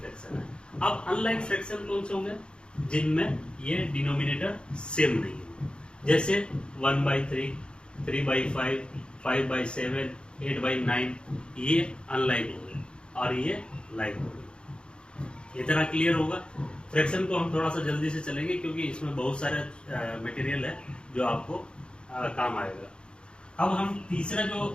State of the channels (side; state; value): right; late; 0.053 ms